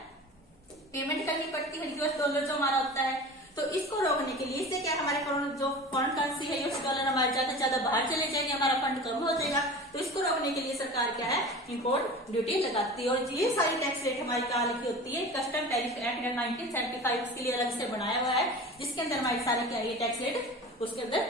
पेमेंट करनी पड़ती है, यूएस डॉलर जो हमारा होता है। तो इसको रोकने के लिए, इससे क्या हमारे जो फॉरेन करेंसी है यूएस डॉलर हमारे ज्यादा से ज्यादा बाहर चले जाएंगे, हमारा फंड कम हो जाएगा। तो इसको रोकने के लिए सरकार क्या है, इंपोर्ट ड्यूटी लगाती है। और ये सारी टैक्स रेट हमारी कहाँ लिखी होती है, कस्टम टैरिफ एक्ट 1975 उसके लिए अलग से बनाया हुआ है, जिसके अंदर हमारी सारी क्या है टैक्स रेट उसके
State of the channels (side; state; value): both; normal; correlation 0.35